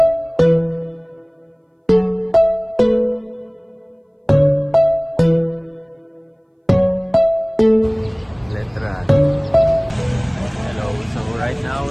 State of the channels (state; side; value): identical; both; correlation 1.00